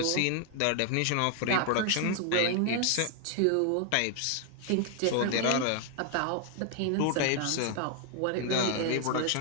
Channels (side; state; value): both; different; correlation 0.00